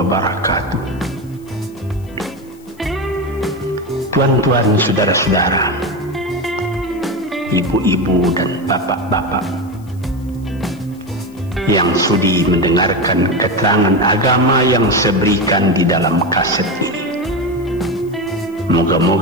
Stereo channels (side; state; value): left; noise; hiss, 29 dB below the sound